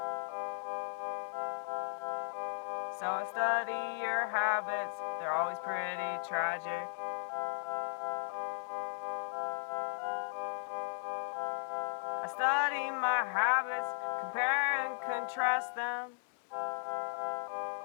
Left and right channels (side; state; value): right; silent; digital silence